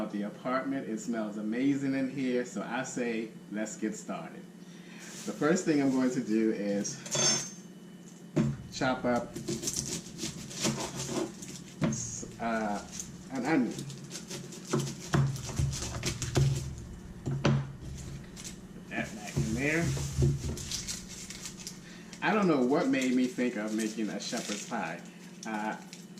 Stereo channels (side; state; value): both; identical; correlation 1.00